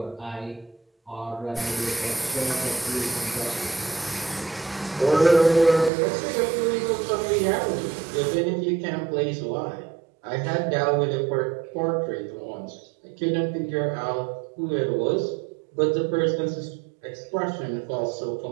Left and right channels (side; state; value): left; drops out; at 5.9 s